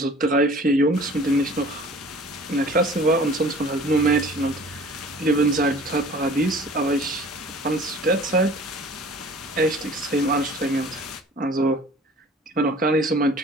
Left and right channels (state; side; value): normal; both; correlation 0.47